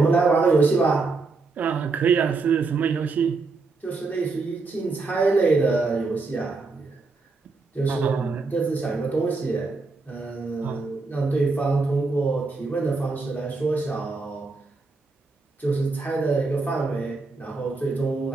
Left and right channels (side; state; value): left; quieter; 3.9 dB